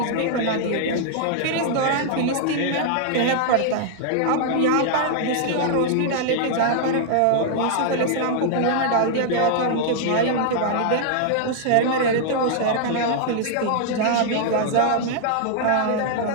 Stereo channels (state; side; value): different; both; correlation -0.01